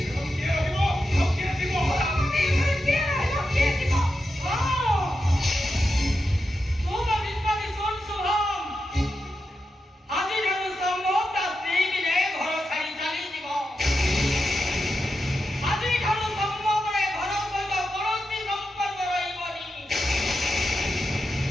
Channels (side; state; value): both; normal; correlation 0.88